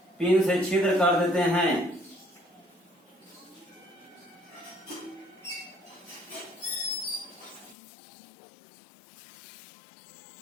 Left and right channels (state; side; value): drops out; right; at 7.8 s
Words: पिन से छिद्र कर देते हैं।